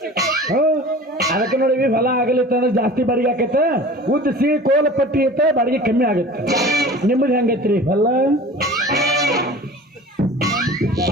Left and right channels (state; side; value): normal; both; correlation 0.41